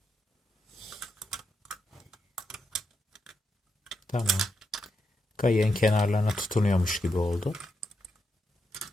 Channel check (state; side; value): normal; both; correlation 0.83